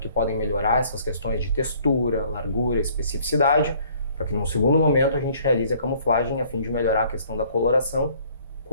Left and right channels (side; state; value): both; inverted; correlation -0.59